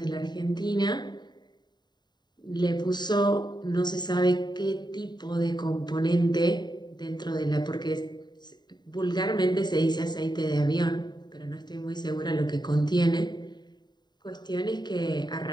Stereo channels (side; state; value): right; late; 0.21 ms